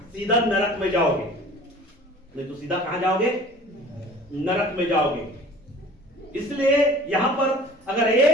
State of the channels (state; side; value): normal; both; correlation 0.46